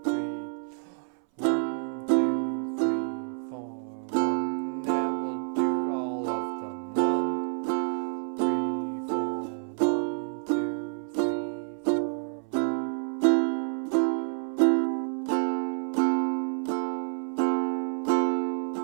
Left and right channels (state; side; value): silent; left; 59 dB below the other